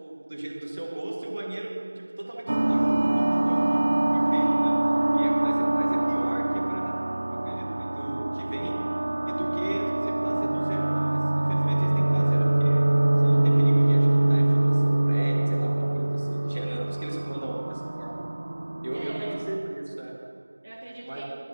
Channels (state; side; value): inverted; both; correlation -1.00